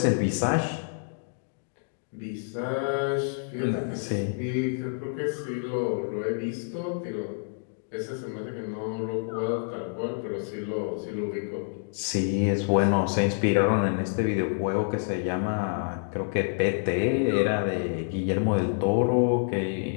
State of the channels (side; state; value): right; silent; digital silence